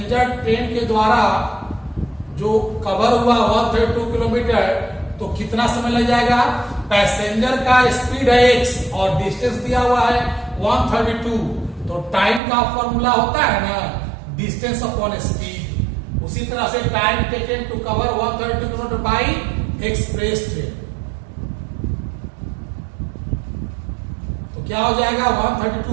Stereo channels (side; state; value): left; drops out; at 12.4 s